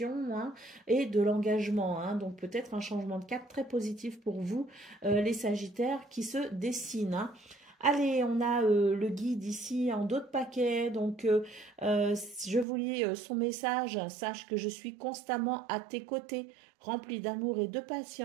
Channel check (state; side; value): drops out; left; at 12.7 s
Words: hein, et de l'engagement, hein. Donc peut-être un changement de cap très positif pour vous, les Sagittaires, qui se dessinent, hein. Allez, on a le guide ici en dos de paquet. Donc, je vous lis son message. Sache que je suis constamment à tes côtés, rempli d'amour et de